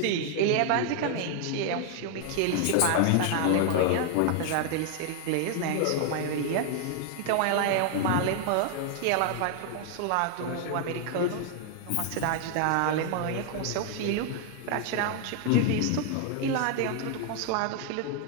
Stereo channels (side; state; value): both; different; correlation 0.00